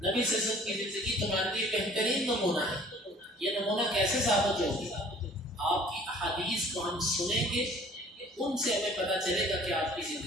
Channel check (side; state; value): both; normal; correlation 0.51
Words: صلی اللہ علیہ وسلم کی زندگی تمہارے لیے بہترین نمونہ ہے. یہ نمونہ کیسے ثابت ہوگی؟ آپ کی احادیث کو ہم سنیں گے، ان سے ہمیں پتہ چلے گا کہ آپ کی